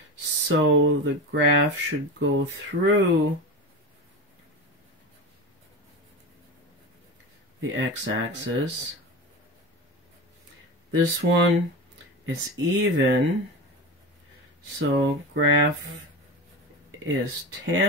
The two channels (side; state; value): both; normal; correlation 0.25